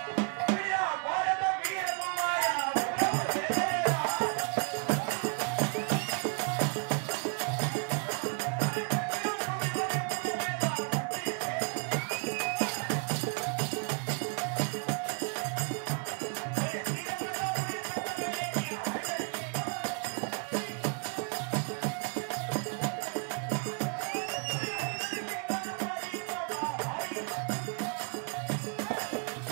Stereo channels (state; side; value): quieter; left; 38.8 dB